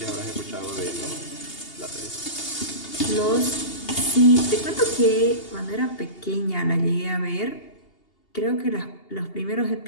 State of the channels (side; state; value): right; late; 2.8 ms